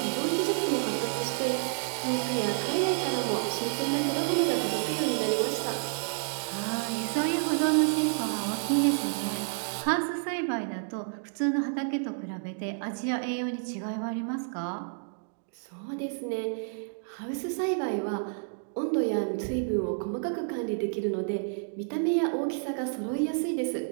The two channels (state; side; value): silent; left; digital silence